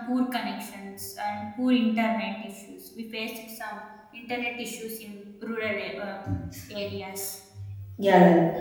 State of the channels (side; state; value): both; identical; correlation 1.00